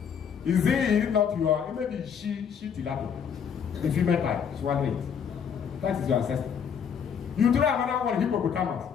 Is it not your? Maybe she tilapia, the female type swallow it. That is your ancestor. You throw another one, hippopotamus.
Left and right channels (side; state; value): right; quieter; 7.4 dB